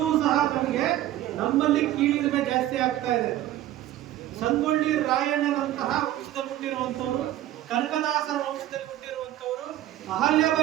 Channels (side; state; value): left; quieter; 13.7 dB